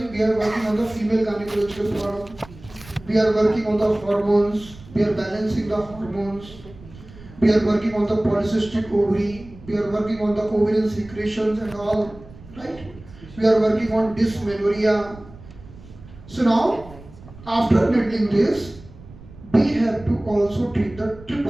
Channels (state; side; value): noise; right; rumble, 19 dB below the sound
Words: we are working on the female gynecological problem, we are working on the hormones, we are balancing the hormones, we are working on the polycystic ovary, we are working on the ovarian secretions and all, right? We are working on dysmenorrhea. So now, after needling this, we have to also treat the